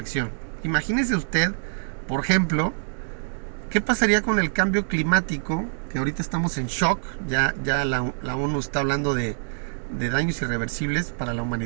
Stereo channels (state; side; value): silent; left; digital silence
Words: Imagínese usted, por ejemplo, ¿qué pasaría con el cambio climático? Que ahorita estamos en shock, ya la ONU está hablando de daños irreversibles para la